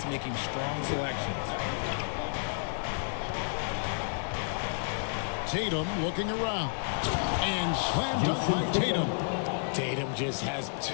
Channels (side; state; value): right; silent; digital silence